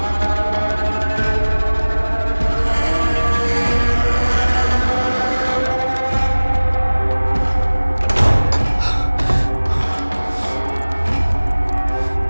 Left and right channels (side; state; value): both; inverted; correlation -1.00